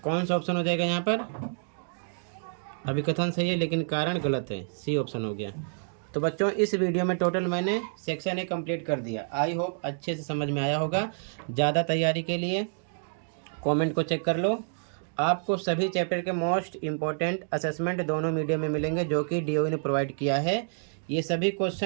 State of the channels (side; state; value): left; silent; digital silence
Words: कौन सा ऑप्शन हो जाएगा यहाँ पर, अभिकथन सही है लेकिन कारण गलत है, सी ऑप्शन हो गया। तो बच्चों, इस वीडियो में टोटल मैंने सेक्शन ए कंप्लीट कर दिया। आई होप अच्छे से समझ में आया होगा। ज़्यादा तैयारी के लिए कमेंट को चेक कर लो। आपको सभी चैप्टर के मोस्ट इम्पोर्टेंट असेसमेंट दोनों मीडियम में मिलेंगे जो कि DOE ने प्रोवाइड किया है। ये सभी